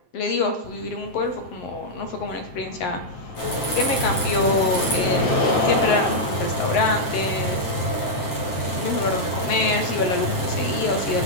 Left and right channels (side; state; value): right; late; 7.6 ms